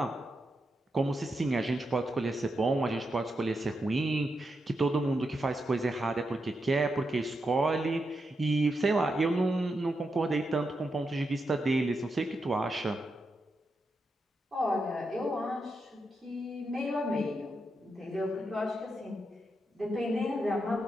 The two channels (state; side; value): normal; both; correlation 0.85